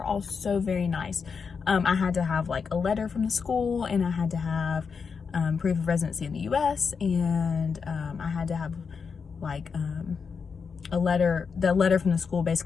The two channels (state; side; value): quieter; right; 5.7 dB